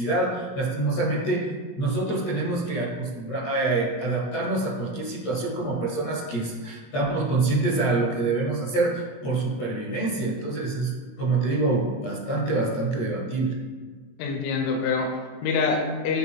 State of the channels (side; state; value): right; late; 21 ms